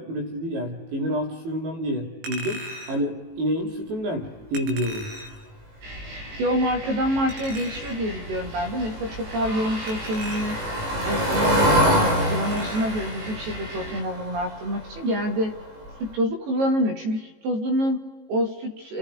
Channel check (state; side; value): late; left; 18 ms